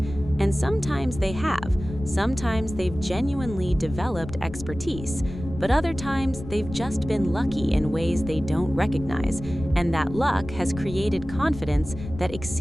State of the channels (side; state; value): left; noise; rumble, 11 dB below the sound